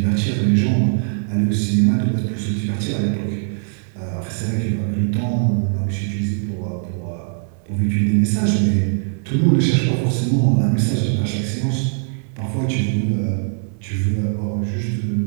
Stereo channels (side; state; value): left; silent; 65 dB below the other